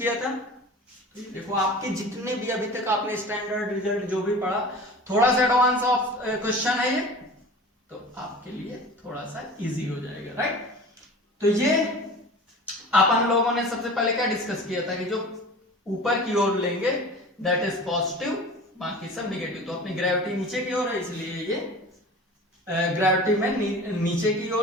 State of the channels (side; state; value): both; normal; correlation 0.38